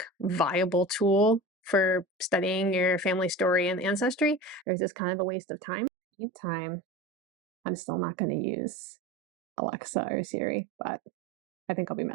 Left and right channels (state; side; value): drops out; left; at 4.7 s